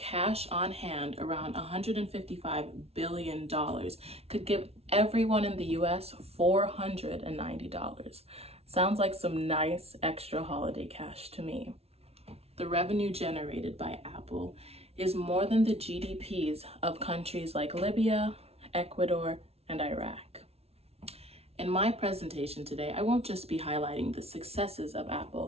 on hand, around $155 billion, could give everyone in the US $490. Sounds like some nice extra holiday cash to me. The revenue generated by Apple is more than the GDPs of countries like Libya, Ecuador, and Iraq. In my presentation today, I won't just be highlighting the successes of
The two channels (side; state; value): left; late; 0.30 ms